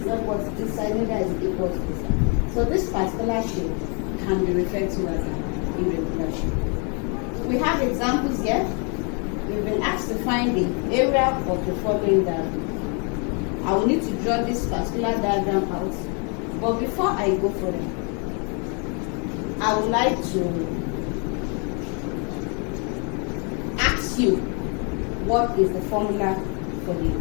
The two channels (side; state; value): right; quieter; 36.3 dB